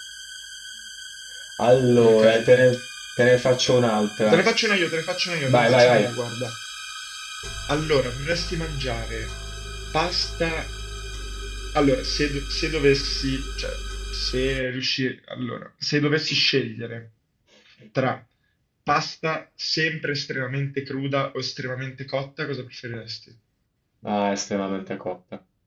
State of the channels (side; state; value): both; identical; correlation 1.00